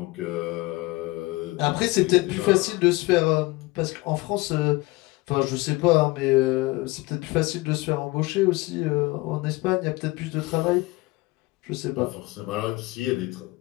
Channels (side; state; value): right; quieter; 21.9 dB